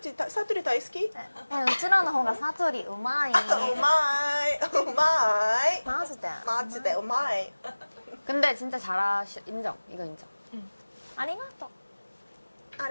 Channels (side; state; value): both; inverted; correlation -1.00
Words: 사투리 다이스키? うちらの方がサトリうまい。 오마이, 오마이. マジで。 마지네, 오마이. 근데 진짜 인정. 이거 인정. ありがとう。